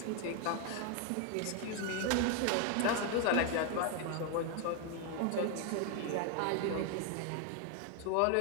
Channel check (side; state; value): both; different; correlation 0.01